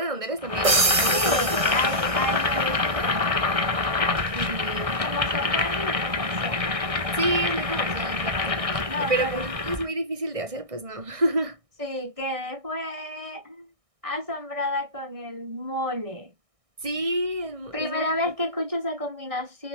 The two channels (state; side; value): late; left; 1.6 ms